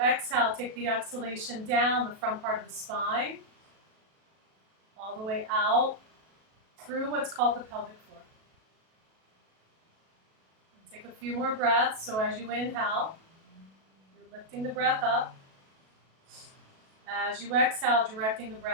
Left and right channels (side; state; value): left; late; 37 ms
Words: take the exhalation down the front part of the spine, all the way out through what's called the pelvic floor. And take a few more breaths. So as you inhale, you're lifting the breath up. As you exhale, directing the